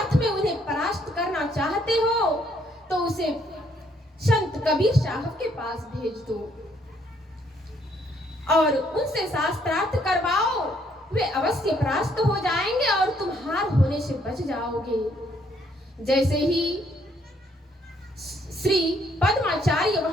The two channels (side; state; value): both; normal; correlation 0.68